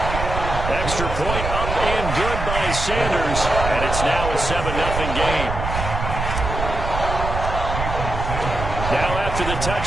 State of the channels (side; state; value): right; noise; rumble, 4 dB below the sound